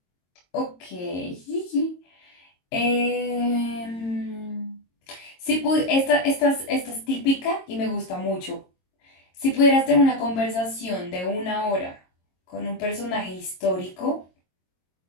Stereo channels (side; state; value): right; late; 22 ms